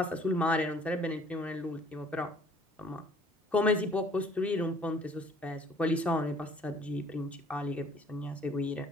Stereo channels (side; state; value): both; normal; correlation 0.56